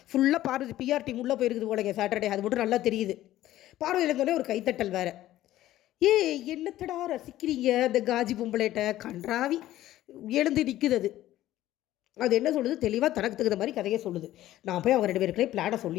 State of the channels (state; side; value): quieter; right; 14.3 dB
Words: ஃபுல்லாக பார்வதி பிஆர் டீம் உள்ளே போயிருக்குது போலங்க சாட்டர்டே. அது மட்டும் நல்லா தெரியுது. பார்வதியில் இருந்தோடனே ஒரு கைத்தட்டல் வேறு. என்னத்தடா ரசிக்கிறீங்க அந்த காஜி பொம்பளைட்ட, கன்றாவி எழுந்து நிற்குது. அது என்ன சொல்லுது, தெளிவாக தனக்கு தகுந்த மாதிரி கதையை சொல்லுது. நான் போய் அவங்க 2 பேருக்குள்ளே பிளானை